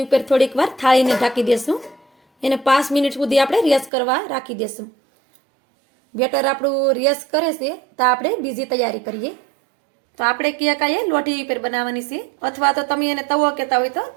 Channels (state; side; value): drops out; left; at 3.9 s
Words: ઉપર થોડીક વાર થાળીને ઢાંકી દેશું. એને 5 મિનિટ સુધી આપણે રેસ્ટ કરવા રાખી દેશું. બેટર આપણું રેસ્ટ કરે છે તો આપણે બીજી તૈયારી કરીએ. તો આપણે કેક આ લોઢી ઉપર બનાવવાની છે, અથવા તો તમે એને તવો કહેતા હોય તો